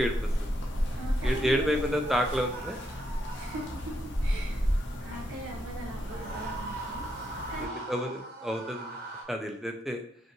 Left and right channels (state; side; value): normal; both; correlation 0.79